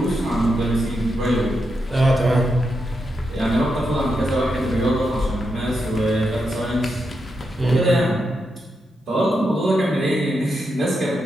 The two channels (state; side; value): normal; both; correlation 0.85